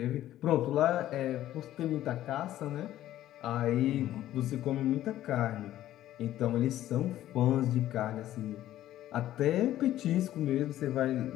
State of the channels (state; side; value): quieter; right; 13.3 dB